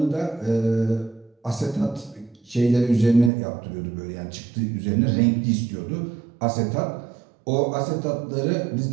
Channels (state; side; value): drops out; left; at 3.3 s